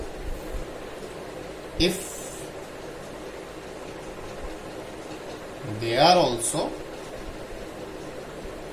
if they are also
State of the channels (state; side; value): identical; both; correlation 1.00